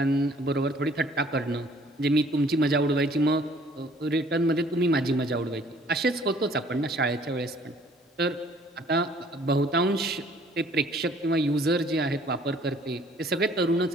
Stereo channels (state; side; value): normal; both; correlation 0.57